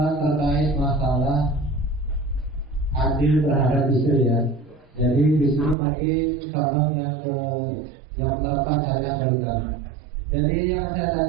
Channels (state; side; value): drops out; left; at 5.8 s